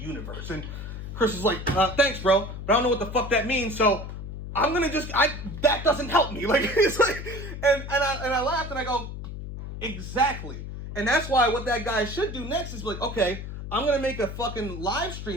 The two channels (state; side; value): noise; left; hum, 8 dB below the sound